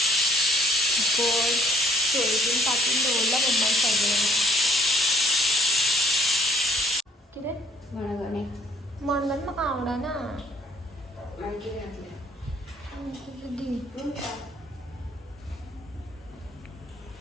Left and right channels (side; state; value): both; normal; correlation 0.64